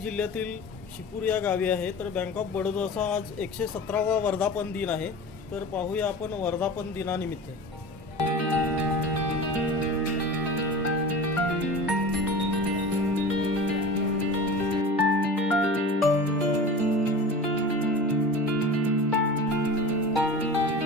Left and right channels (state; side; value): normal; both; correlation 0.34